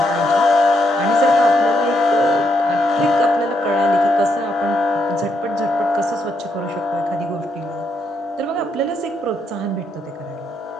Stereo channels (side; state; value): both; normal; correlation 0.77